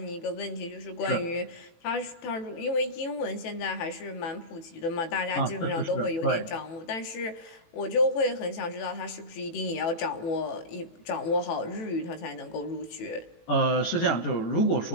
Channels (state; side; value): late; right; 18 ms